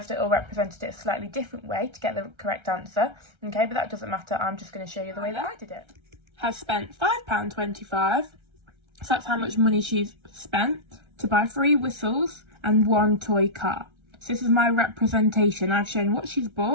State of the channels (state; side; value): late; left; 1.3 ms